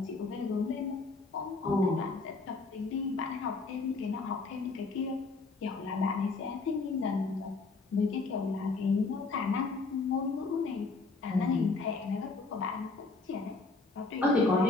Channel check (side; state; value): right; quieter; 3.8 dB